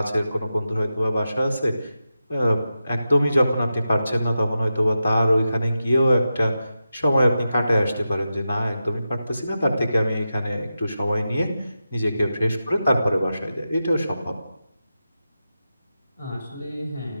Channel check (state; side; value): inverted; both; correlation -0.90